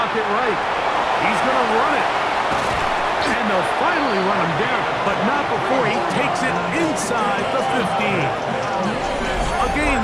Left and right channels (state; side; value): identical; both; correlation 1.00